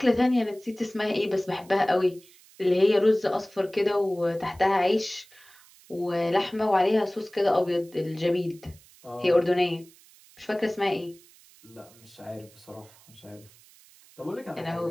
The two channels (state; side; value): noise; right; hiss, 26 dB below the sound